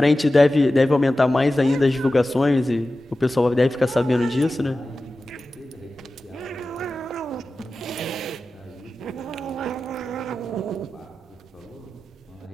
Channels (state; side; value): normal; both; correlation 0.94